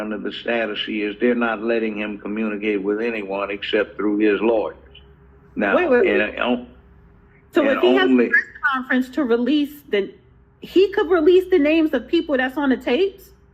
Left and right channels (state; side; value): identical; both; correlation 1.00